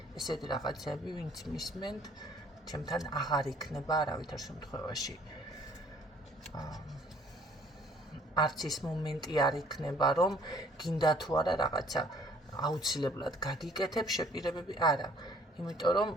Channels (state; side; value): normal; both; correlation 0.58